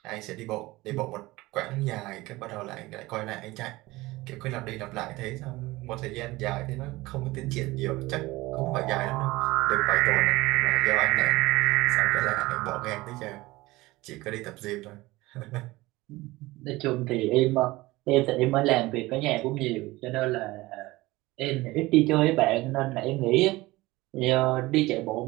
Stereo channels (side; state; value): left; quieter; 19.9 dB